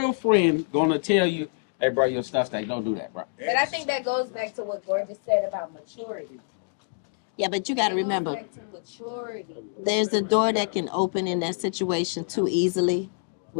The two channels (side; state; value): right; silent; digital silence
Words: friend gonna tell you, hey, bro, your stuff stay. Don't do that, bro. But I think that goes back to what Gorgeous said about maturity. Yeah, but you got to remember, Back to maturity. there's a door that can open in that situation too easily